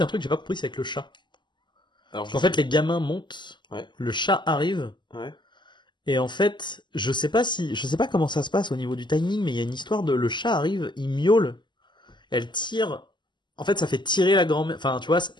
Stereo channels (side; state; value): right; late; 0.22 ms